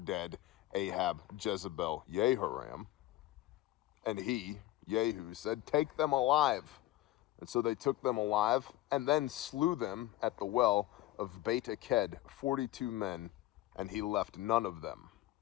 Ahab, Jezebel, Jehoram. And he, Jehu, said, "Take them alive." And so they took them alive and then slew them at the well of Beit Aked, 42 men, and he left none of them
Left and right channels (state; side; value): quieter; right; 15.9 dB